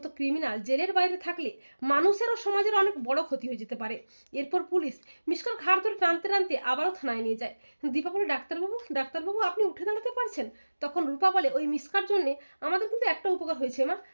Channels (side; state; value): both; inverted; correlation -1.00